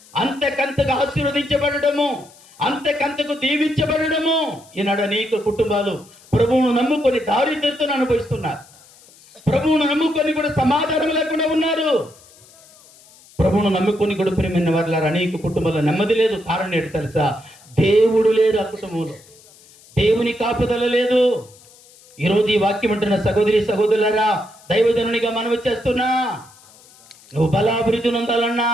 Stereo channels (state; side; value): noise; left; hiss, 26 dB below the sound